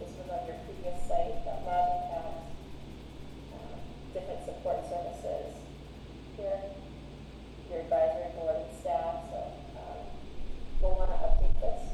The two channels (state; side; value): identical; both; correlation 1.00